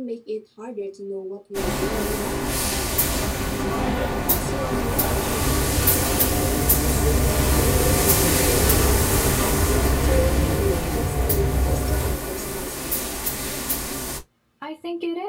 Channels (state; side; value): identical; both; correlation 1.00